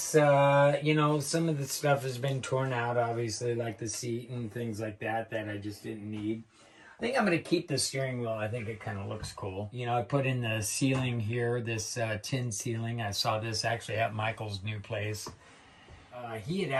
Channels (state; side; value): identical; both; correlation 1.00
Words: of the stuff has been torn out, obviously, like the seat and things like that I just didn't need. I think I'm going to keep the steering wheel. I think it kind of looks cool. I put in the ceiling here, this tin ceiling. I saw this actually at Michael's new place. He had